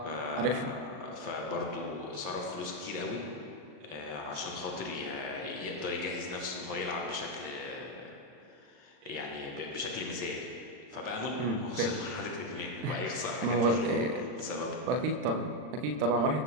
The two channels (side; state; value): left; late; 39 ms